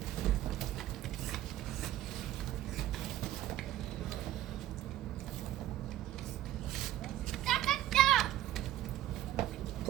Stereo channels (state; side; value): quieter; left; 13.5 dB